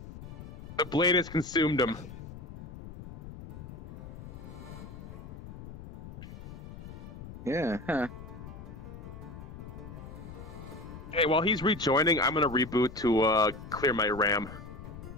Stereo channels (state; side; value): noise; left; rumble, 12 dB below the sound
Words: The blade has consumed him. Yeah, huh. Hey, while he's rejoining, I'm gonna reboot to clear my RAM.